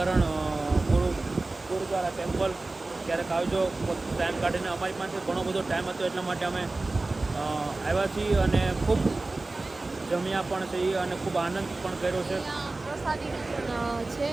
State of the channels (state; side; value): quieter; left; 3.2 dB